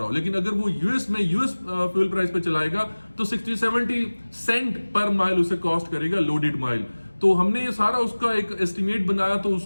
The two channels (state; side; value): inverted; both; correlation -1.00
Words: हो। लेकिन अगर वो यूएस में यूएस फ्यूल प्राइस पे चलाएगा तो 60-70 सेंट पर माइल उसे कॉस्ट करेगा लोडेड माइल। तो हमने ये सारा उसका एक एस्टिमेट बनाया, तो